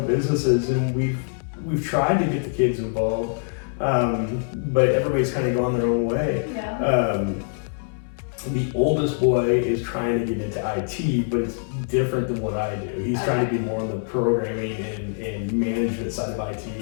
businesses, and we've tried to get the kids involved, but everybody's kind of gone their own way. yeah. The oldest boy is trying to get into IT, but it's different than what I do. He's trying to be more on the programming and management side of IT,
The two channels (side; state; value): right; silent; 60 dB below the other